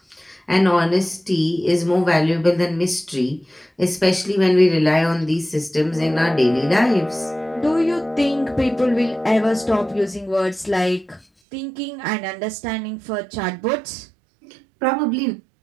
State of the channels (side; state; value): left; drops out; at 11.2 s